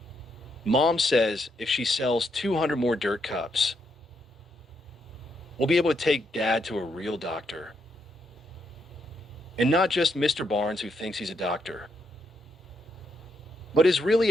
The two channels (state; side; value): normal; both; correlation 0.78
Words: Mom says if she sells 200 more dirt cups, we'll be able to take Dad to a real doctor. And not just Mr. Barnes who thinks he's a doctor, but is really